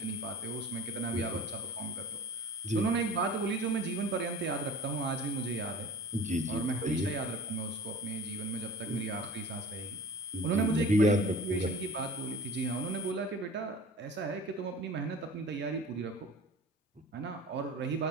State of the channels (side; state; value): both; normal; correlation 0.41